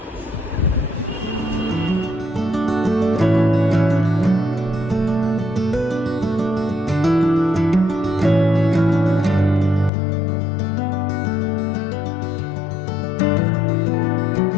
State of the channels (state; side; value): drops out; right; at 9.9 s